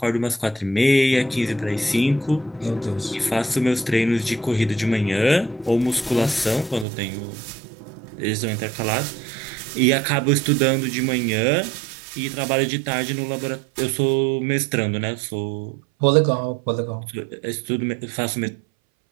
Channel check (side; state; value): left; drops out; at 6.9 s